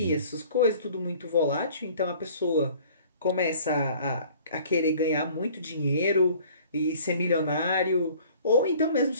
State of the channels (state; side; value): inverted; both; correlation -0.51